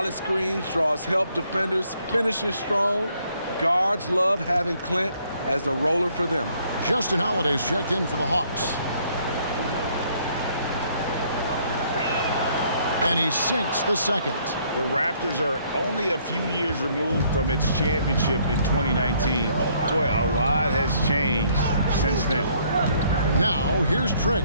screens, draws help defenders, finishes strong. Guards love having Clint as the roller for them. Justin Holiday's checked in for the Hawks. And he sinks the second. The Raptors are only a few years removed from its championship in 2019. Boy, a lot has changed since then. Now, here's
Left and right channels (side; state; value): both; inverted; correlation -0.65